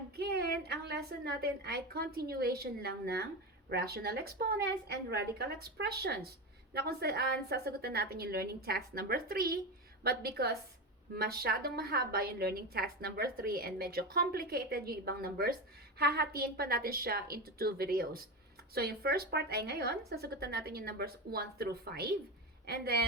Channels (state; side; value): normal; both; correlation 0.20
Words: ang lesson natin ay continuation lang ng rational exponents and radical expressions na kung saan sasagutan natin yung learning task number 3 but because masyadong mahaba yung learning task number 3 and medyo complicated yung ibang numbers, hahatiin pa natin siya into 2 videos. So yung first part ay ngayon, sasagutan natin yung numbers 1 through 5 and